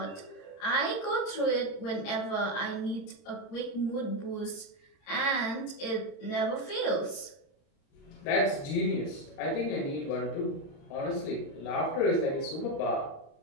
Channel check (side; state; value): right; late; 30 ms